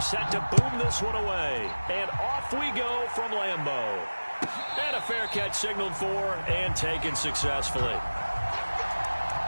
to boom this one away, and off we go from Lambeau. And a fair catch signaled for and taken successfully.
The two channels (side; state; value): both; inverted; correlation -1.00